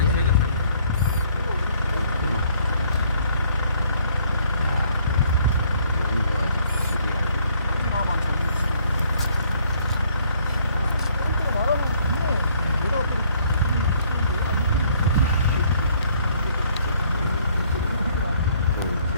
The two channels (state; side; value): inverted; both; correlation -0.64